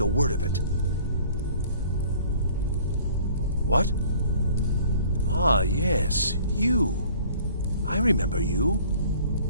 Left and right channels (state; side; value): inverted; both; correlation -0.53